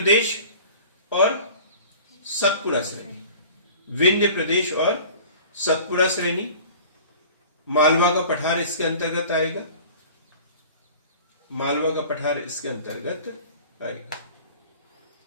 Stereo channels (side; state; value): both; inverted; correlation -0.43